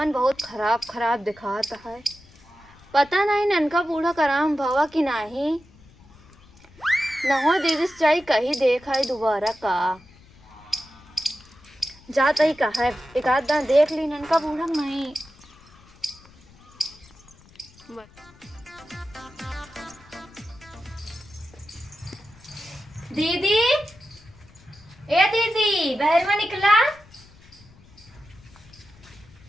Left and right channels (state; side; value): noise; left; rumble, 25 dB below the sound